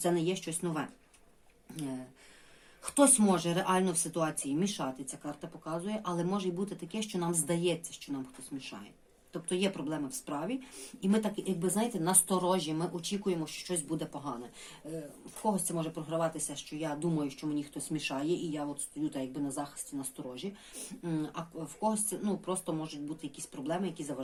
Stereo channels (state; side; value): identical; both; correlation 1.00